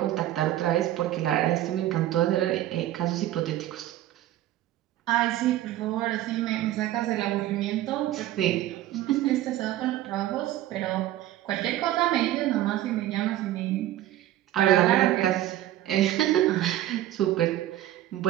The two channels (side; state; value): left; quieter; 13.8 dB